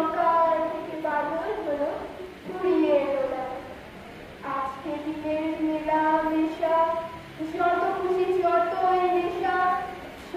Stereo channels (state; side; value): identical; both; correlation 1.00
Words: থেকে বাদল হলো ফুরিয়ে এলো বেলা। আজকে দিনের মেলা মেশা, যত খুশি যতই নেশা,